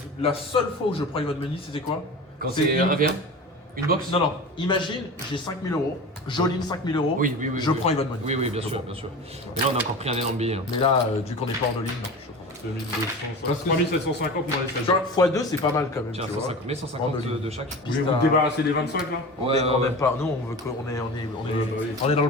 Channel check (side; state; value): both; normal; correlation 0.33